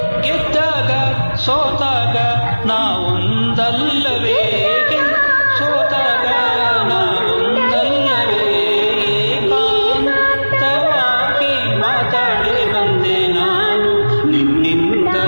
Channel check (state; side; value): inverted; both; correlation -1.00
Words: ಗೆದ್ದಾಗ ಸೋತಾಗ ನಾವೊಂದಲ್ಲವೇ, ಸೋತಾಗ ನಾವೊಂದಲ್ಲವೇ. ಏಕಾಂತವಾಗಿ ಮಾತಾಡಿ ಬಂದೆ ನಾನು, ನಿನ್ನಿಂದ